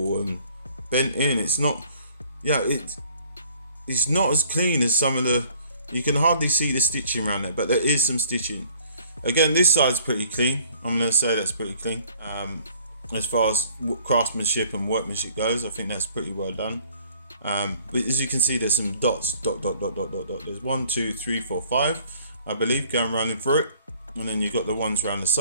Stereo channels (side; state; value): both; inverted; correlation -0.57